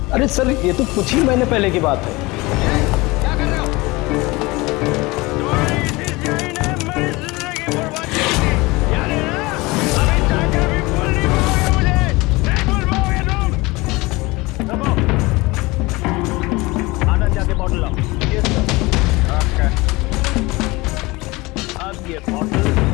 अरे सर ये तो कुछ ही महीने पहले की बात है।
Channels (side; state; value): right; quieter; 22.7 dB